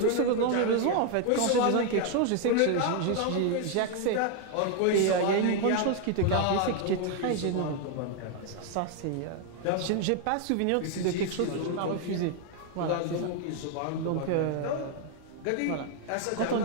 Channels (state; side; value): different; both; correlation 0.00